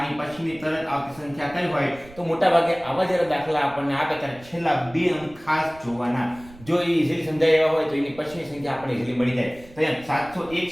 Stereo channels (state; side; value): noise; right; rumble, 22 dB below the sound